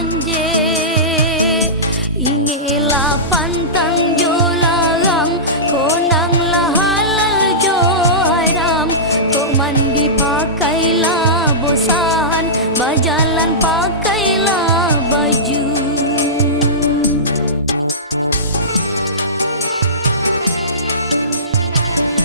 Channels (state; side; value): normal; both; correlation -0.19